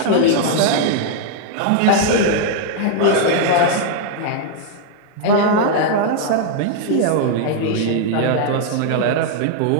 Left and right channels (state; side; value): different; both; correlation -0.01